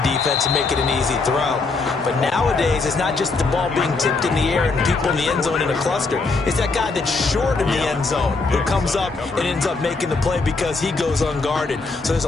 and make it an easy throw. But nowadays, it's not just the ball being tipped in the air and people in the end zone in a cluster. It's that guy that's short in the end zone who comes up and ends up making the play because he goes unguarded. So there's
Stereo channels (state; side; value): quieter; right; 3.9 dB